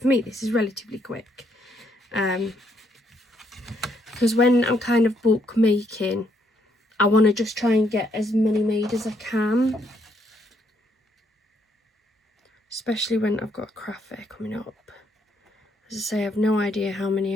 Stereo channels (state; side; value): normal; both; correlation 0.73